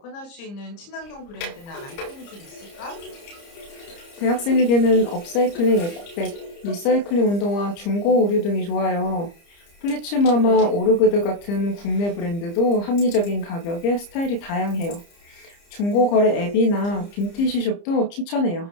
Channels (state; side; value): late; right; 30 ms